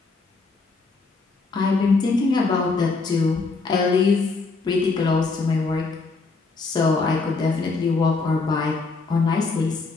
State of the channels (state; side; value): quieter; right; 4.0 dB